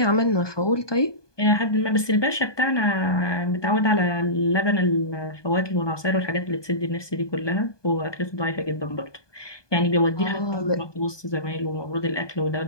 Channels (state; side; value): late; right; 1.2 ms